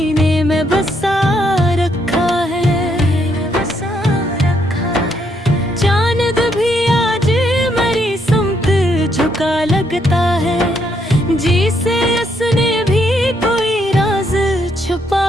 में बसा रखा है। चांद भी आज मरी समत झुका लगता है, जी से उसने भी कोई राज छुपा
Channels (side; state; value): both; normal; correlation 0.74